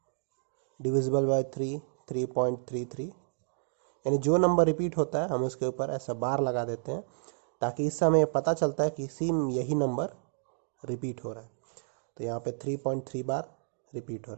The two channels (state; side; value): silent; left; digital silence